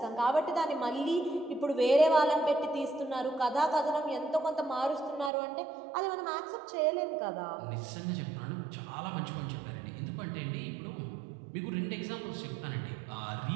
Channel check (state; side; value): drops out; left; at 5.3 s